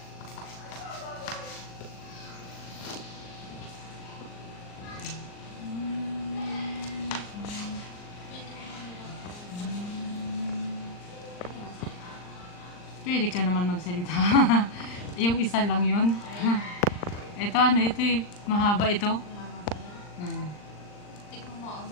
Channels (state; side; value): late; right; 39 ms